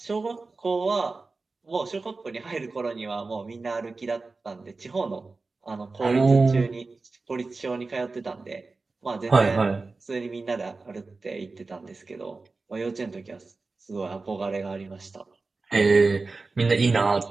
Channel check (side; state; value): left; quieter; 3.8 dB